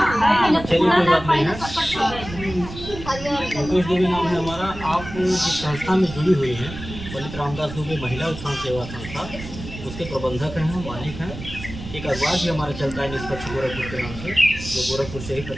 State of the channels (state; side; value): noise; right; rumble, 11 dB below the sound